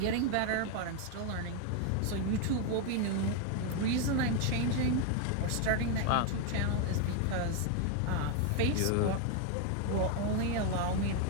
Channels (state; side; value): different; both; correlation 0.01